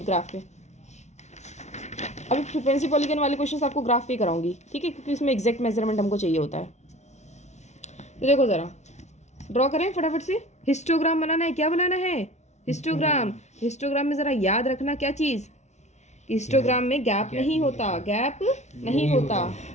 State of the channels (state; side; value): late; right; 0.33 ms